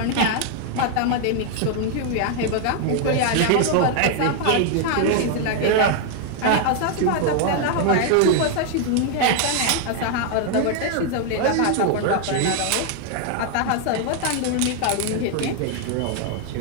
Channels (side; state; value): both; different; correlation 0.00